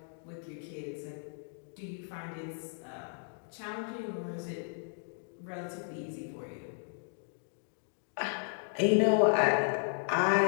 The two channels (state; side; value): silent; right; digital silence